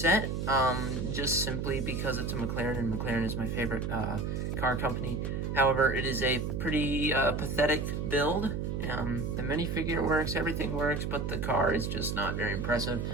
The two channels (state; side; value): noise; right; hum, 2 dB below the sound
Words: just simply because it's a McLaren, and McLaren is my favorite car company. However, it is a pretty pathetic build. The minifigure works, everything works, but the car is just not very impressive.